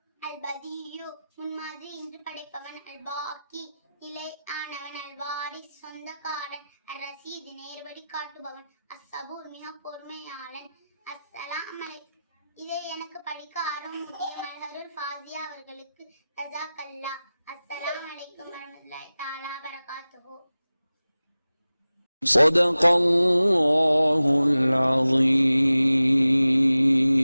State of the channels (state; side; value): inverted; both; correlation -0.96